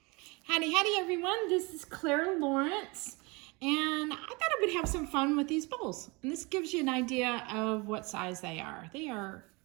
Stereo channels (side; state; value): left; quieter; 27.1 dB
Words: Howdy, howdy everyone, this is Clara Lawrence, and I thought I would have some fun with these bowls. And this gives you an idea of what size they are. They are